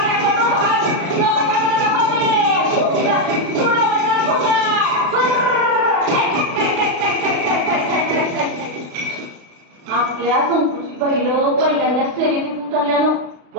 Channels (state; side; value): late; left; 36 ms